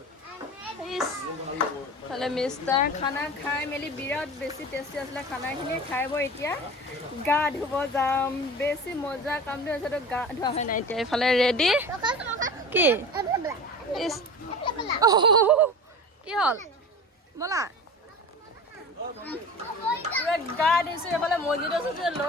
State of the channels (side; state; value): both; normal; correlation 0.35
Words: তাহলে মিষ্টাৰ খানা খাই মেলি বিৰাট বেছি টেষ্টি আছিলে খানাখিনি। খাই বৈ এতিয়া গা ধুব যাম। বেছি মজা কামটো হৈছে, তো গা ধোৱা হয় নাই। এতিয়া এইফালে ৰেডি। কি কি হ'ল ব'লা গা ধুইছোঁ। এইফালে মছজিদ আছে